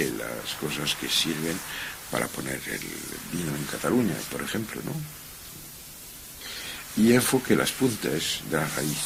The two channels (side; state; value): both; identical; correlation 1.00